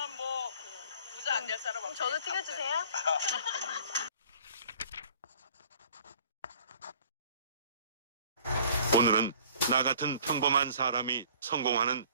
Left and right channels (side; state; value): both; inverted; correlation -0.51